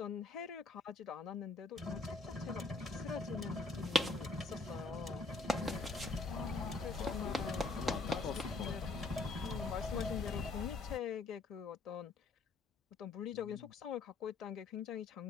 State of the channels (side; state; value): right; quieter; 3.2 dB